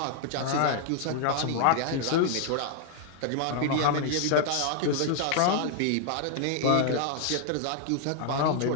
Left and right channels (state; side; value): different; both; correlation 0.00